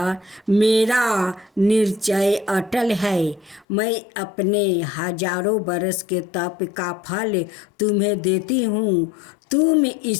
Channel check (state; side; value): drops out; right; at 3.7 s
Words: मेरा निश्चय अटल है। मैं अपने हजारों बरस के तप का फल तुम्हें देती हूँ, तुम